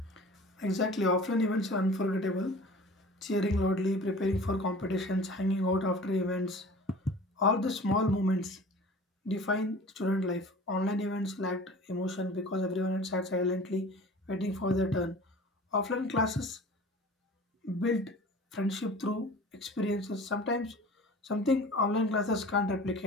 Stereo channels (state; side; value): normal; both; correlation 0.42